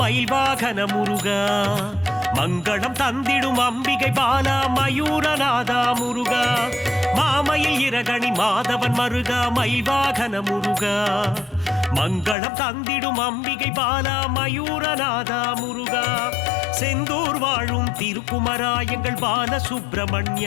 வாகன முருகா மங்களம் தந்திடும் அம்பிகை பாலா மயூரநாதா முருகா மாமயில் இரகணி மாதவன் மருகா மயில் வாகன முருகா மங்களம் தந்திடும் அம்பிகை பாலா மயூரநாதா முருகா செந்தூர் வாழும் திருக்குமரா எங்கள் பால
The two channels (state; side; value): drops out; right; at 12.4 s